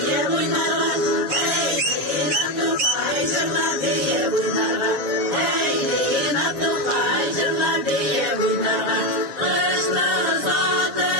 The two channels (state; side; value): late; left; 7.5 ms